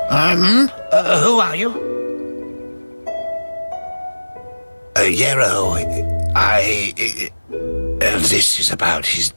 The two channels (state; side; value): inverted; both; correlation -1.00